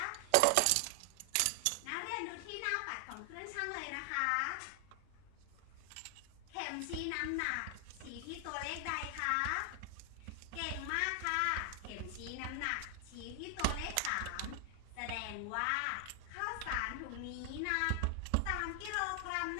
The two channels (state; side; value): different; both; correlation 0.00